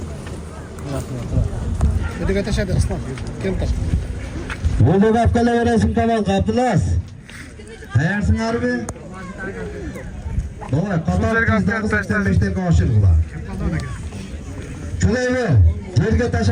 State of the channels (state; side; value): identical; both; correlation 1.00